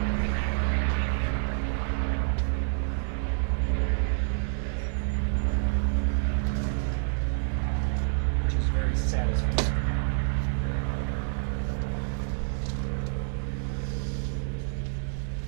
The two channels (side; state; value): left; silent; 59 dB below the other